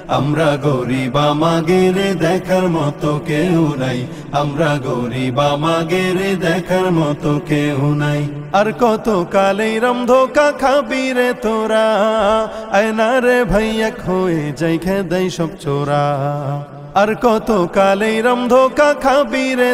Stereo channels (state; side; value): identical; both; correlation 1.00